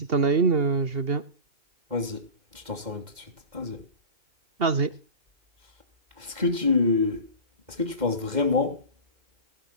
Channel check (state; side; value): late; left; 2.1 ms